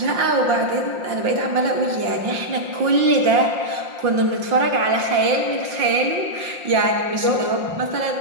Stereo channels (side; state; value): left; late; 5.7 ms